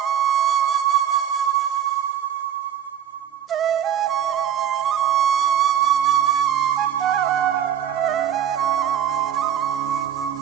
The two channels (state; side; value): quieter; left; 9.7 dB